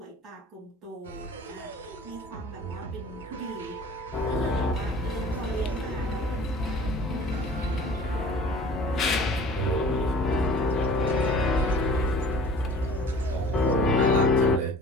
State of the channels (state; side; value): normal; both; correlation 0.46